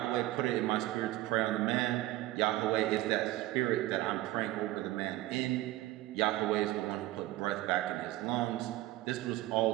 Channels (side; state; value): left; quieter; 16.5 dB